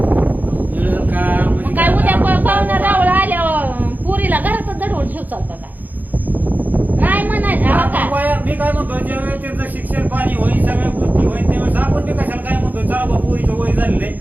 मिळेल का म्हणजे मग काय उद्या पाहुणा रावळ आल्यावर पुरीला घरातच दडवून ठेव चालतं का? नाही म्हणायचं हो का? मी काय म्हणतो, ज्यावेळेस त्यांचं शिक्षण पाणी होईल, सगळ्या गोष्टी होईल, त्यावेळेस आपण ते कशाला काय म्हणतो, चला बा पोरीचं वय झालेलं आहे,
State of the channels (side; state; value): left; late; 0.083 ms